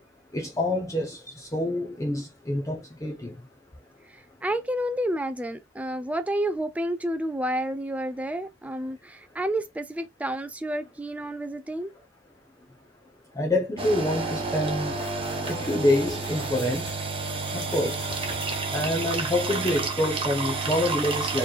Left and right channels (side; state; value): both; normal; correlation 0.62